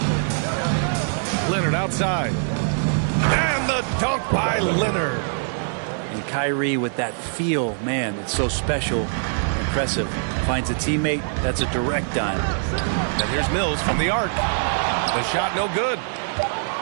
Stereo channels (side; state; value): left; silent; digital silence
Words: Leonard outside. And the dunk by Kawhi Leonard. And Kyrie with that feel, man, it's so special, impressive. Finds a teammate, that's a direct dime. And here's Mills from the arc. The shot no good.